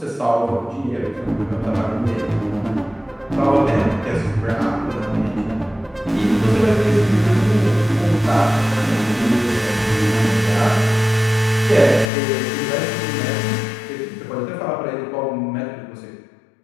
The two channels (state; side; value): drops out; right; at 12.1 s